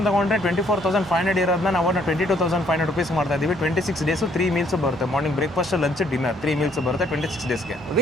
ತೊಗೊಂಡ್ರೆ 24,500 ಇರೋದನ್ನ ನಾವು 22,500 ರುಪೀಸ್ ಮಾಡ್ತಾ ಇದ್ದೀವಿ. 26 ಡೇಸು 3 ಮೀಲ್ಸ್ ಬರುತ್ತೆ. Morning breakfast, lunch, dinner 3 meals ಬರುತ್ತೆ 26 ಡೇಸ್ಗೆ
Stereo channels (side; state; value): both; normal; correlation 0.65